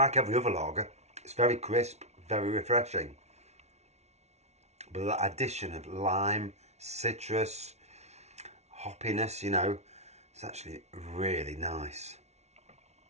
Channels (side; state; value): left; late; 0.32 ms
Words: every other lager, it's very crisp, very refreshing. But that addition of lime, citrus, hoppiness, you know, it's actually really nice.